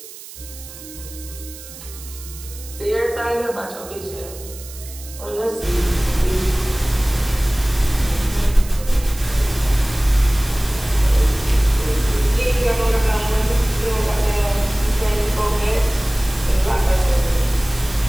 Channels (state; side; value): noise; right; hiss, 16 dB below the sound